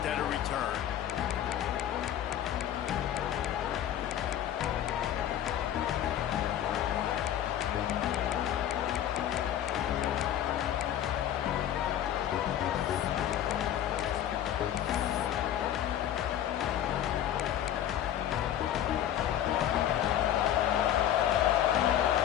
at a return.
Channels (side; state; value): right; quieter; 10.9 dB